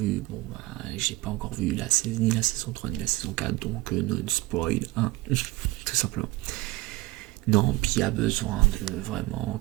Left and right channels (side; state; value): left; quieter; 19.8 dB